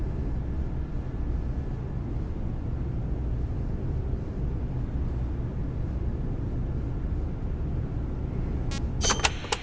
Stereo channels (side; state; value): both; identical; correlation 1.00